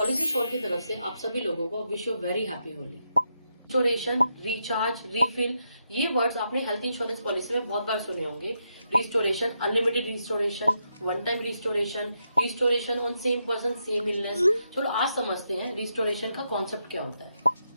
Policy sure की तरफ से आप सभी लोगों को wish you very happy Holi. Restoration, recharge, refill, ये वर्ड्स आपने हेल्थ इंश्योरेंस पॉलिसी में बहुत बार सुने होंगे। Restoration, unlimited restoration, one time restoration, restoration on same person same illness. चलो आज समझते हैं रिस्टोरेशन का कॉन्सेप्ट क्या होता है।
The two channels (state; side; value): inverted; both; correlation -0.82